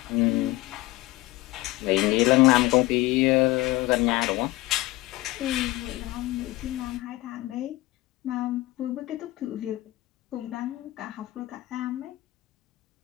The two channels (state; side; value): quieter; right; 18.9 dB